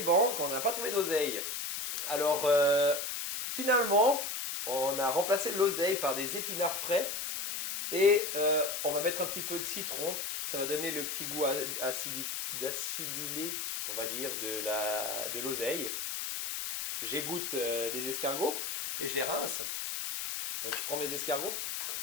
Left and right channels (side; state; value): left; noise; hiss, 3 dB below the sound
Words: banques, on n'a pas trouvé d'oseille. Alors, finalement, on a remplacé l'oseille par des épinards frais et on va mettre un petit peu de citron. Ça va donner le petit goût d'acidulé, on va dire, de l'oseille. J'égoutte les escargots et je les rince. Donc je prends mes escargots.